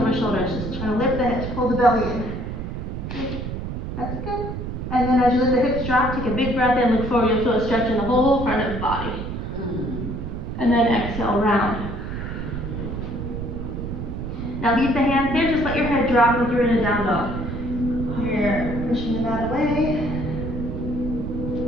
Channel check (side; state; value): right; noise; rumble, 5 dB below the sound